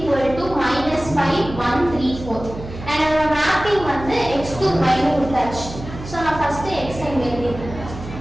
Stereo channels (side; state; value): right; noise; hum, 12 dB below the sound